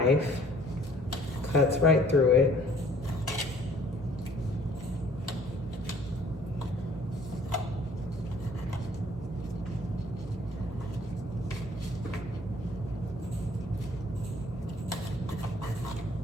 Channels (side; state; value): both; normal; correlation 0.56